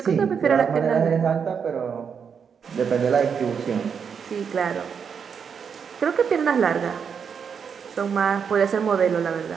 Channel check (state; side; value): quieter; left; 6.8 dB